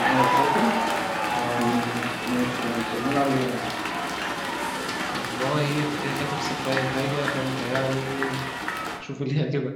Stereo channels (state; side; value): identical; both; correlation 1.00